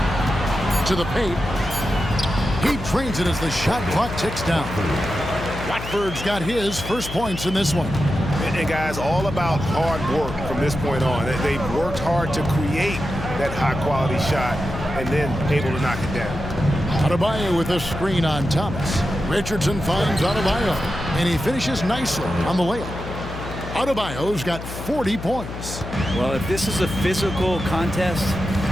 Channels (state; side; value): noise; left; hum, 9 dB below the sound